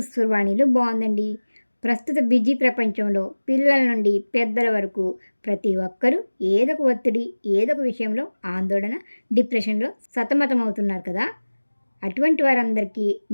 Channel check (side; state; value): both; inverted; correlation -1.00